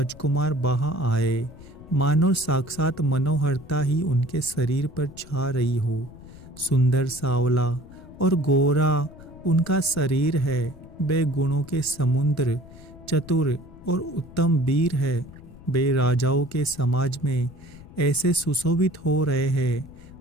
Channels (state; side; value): noise; left; rumble, 19 dB below the sound